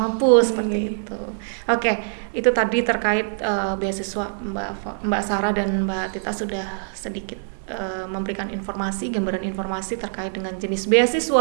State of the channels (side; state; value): left; silent; digital silence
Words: mampu seperti itu. Oke, itu tadi terkait beasiswa. Mbak Sarah dan Mbak Tita sudah sedikit memberikan gambaran informasi terkait dengan jenis